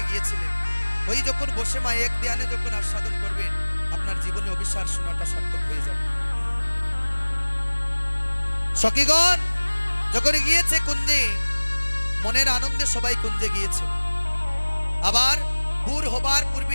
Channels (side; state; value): both; inverted; correlation -1.00